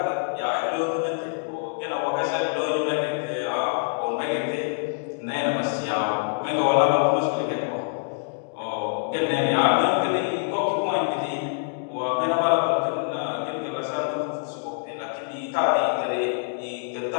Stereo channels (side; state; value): right; silent; digital silence